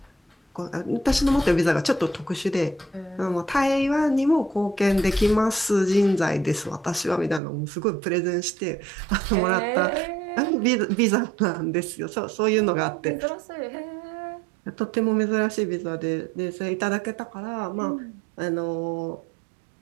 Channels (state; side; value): drops out; left; at 7.4 s